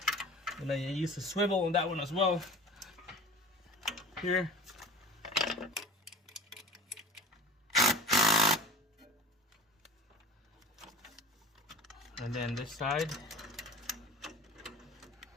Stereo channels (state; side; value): normal; both; correlation 0.39